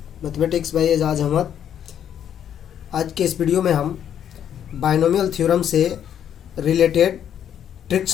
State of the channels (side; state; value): right; quieter; 9.5 dB